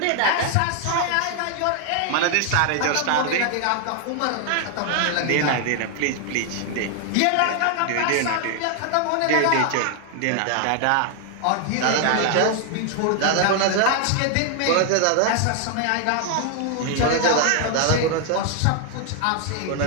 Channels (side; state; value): both; different; correlation 0.00